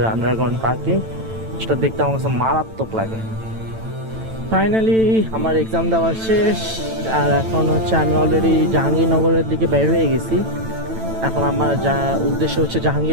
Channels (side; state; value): left; late; 9.0 ms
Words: আন্ডারগ্রাউন্ড পার্কিং, সেটা দেখতে আমার কাছে মারাত্মক লাগে। ফাইনালি আমার এক্সাম দেওয়া শেষ, আর এখন হচ্ছে আমি অলরেডি জাহাঙ্গীরনগরের দিকে বের হয়ে গেছি। এখন আমার যা উদ্দেশ্য হচ্ছে